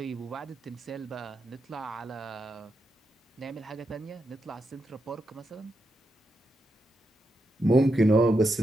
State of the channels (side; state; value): both; normal; correlation 0.85